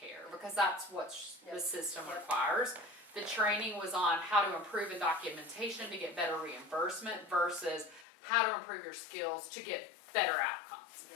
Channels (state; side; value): drops out; right; at 8.1 s